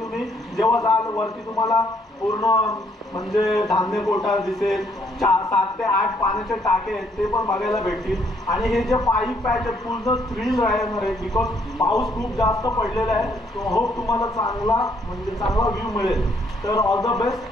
जेव्हा जाल वरती तुम्हाला पूर्ण म्हणजे धान्य कोठार दिसेल. 7 ते 8 पाण्याचे टाके आहेत ते पण बघायला भेटतील. आणि हे जे 5 पॅच आहेत पूर्ण थ्रिल राहणार आहे बिकॉज पाऊस खूप जास्त पडलेला आहे. तो होप तुम्हाला चांगला व्ह्यू मिळेल. तर ऑल द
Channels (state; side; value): normal; both; correlation 0.69